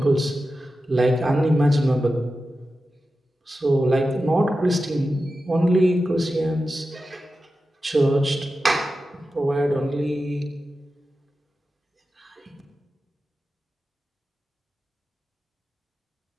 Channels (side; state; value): both; normal; correlation 0.92